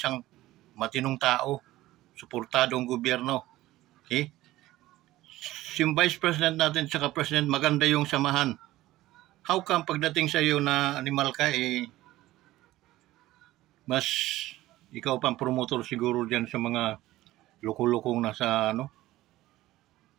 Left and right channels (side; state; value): left; quieter; 16.4 dB